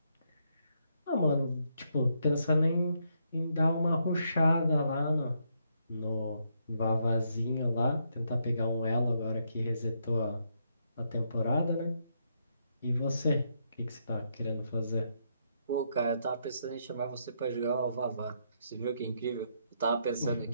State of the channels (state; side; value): inverted; both; correlation -0.77